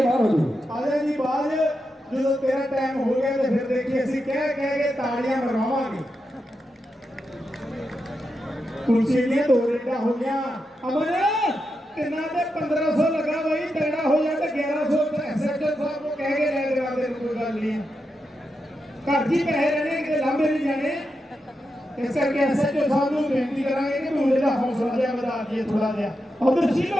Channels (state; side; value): normal; both; correlation 0.87